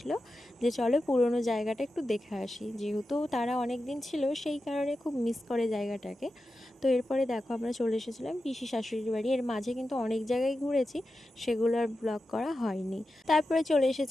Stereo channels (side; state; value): both; normal; correlation 0.91